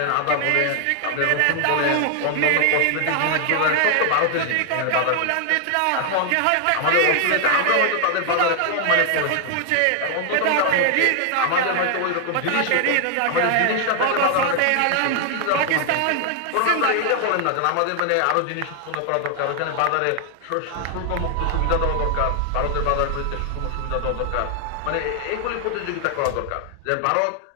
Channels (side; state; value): both; different; correlation 0.00